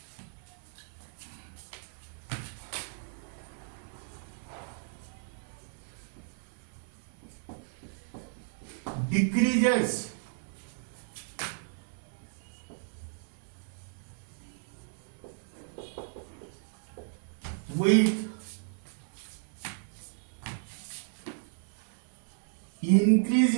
decreases with increase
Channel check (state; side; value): silent; left; 55 dB below the other